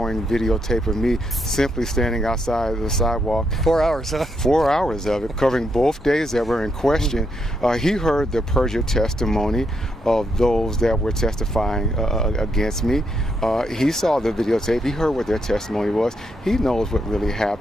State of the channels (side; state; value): both; normal; correlation 0.79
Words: videotape of me simply standing outside the sidewalk. 4 hours, huh? 4 hours of it, covering both days that were in question. He heard the perjured testimony of those that were testifying against me. He saw the videotape. He heard what their testimony was. He knows what really